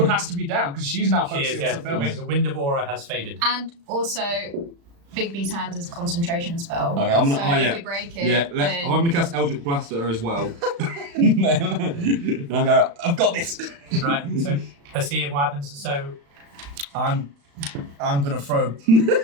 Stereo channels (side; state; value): left; late; 35 ms